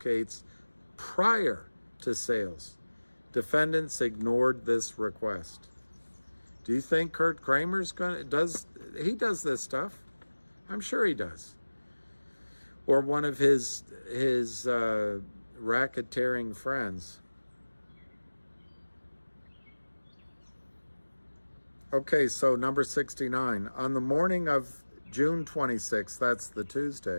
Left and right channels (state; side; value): inverted; both; correlation -1.00